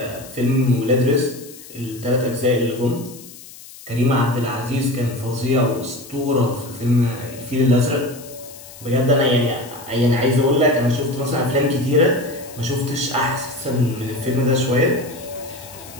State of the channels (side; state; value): left; noise; hiss, 18 dB below the sound